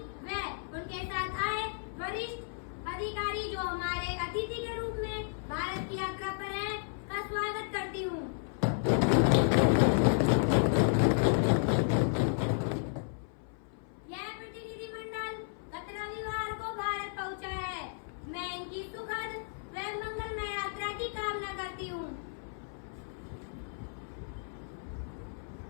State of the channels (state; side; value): silent; right; 56 dB below the other